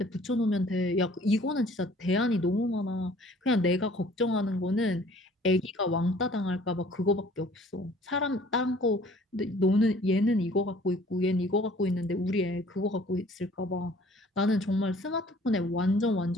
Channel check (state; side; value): normal; both; correlation 0.54